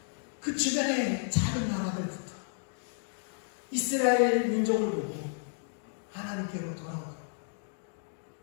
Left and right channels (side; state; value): right; silent; digital silence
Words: 그 주변의 작은 나라들부터 이스라엘 민족을 보고 하나님께로 돌아오고